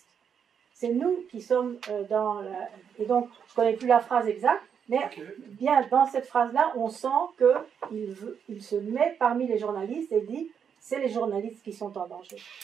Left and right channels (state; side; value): quieter; left; 7.4 dB